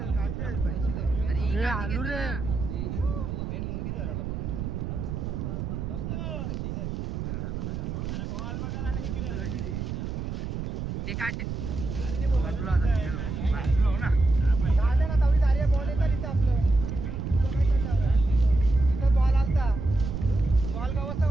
काटत आलू रे मेन मुंडी धरायला ते काटे बाजूला आता ना तेवढी दारी बॉल येतात इथं आपलं तुझं काय चाललं इथं बॉल आलता बॉल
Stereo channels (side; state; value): right; noise; rumble, 4 dB below the sound